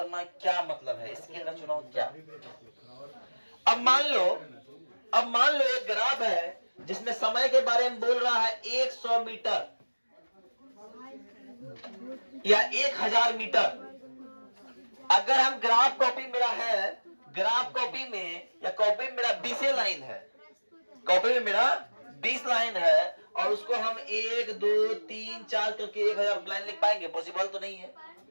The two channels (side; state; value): both; inverted; correlation -1.00